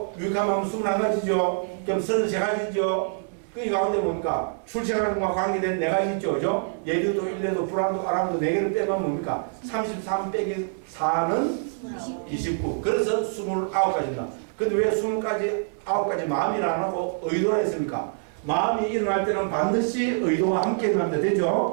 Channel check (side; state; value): left; silent; digital silence